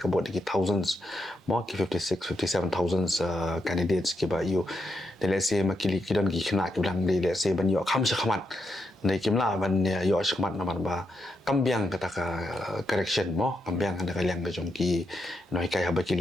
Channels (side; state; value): both; normal; correlation 0.83